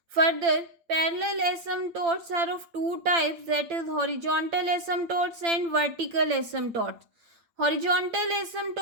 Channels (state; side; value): late; left; 8.8 ms